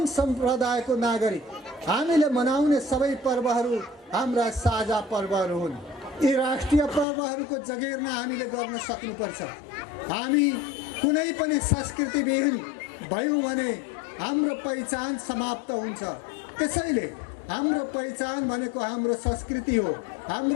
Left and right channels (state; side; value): drops out; right; at 7.1 s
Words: सम्प्रदायको नागरिक, हामीले मनाउने सबै पर्वहरू हाम्रा साझा पर्वहरू हुन्। यी राष्ट्रिय पर्वहरूको जगेर्ना हामीले गर्न सक्नुपर्छ। हामी कुनै पनि संस्कृतिविहीन भयौँ भने हाम्रो पहिचान समाप्त हुन्छ। त्यसैले हाम्रो पहिचान भनेको हाम्रो संस्कृति हो,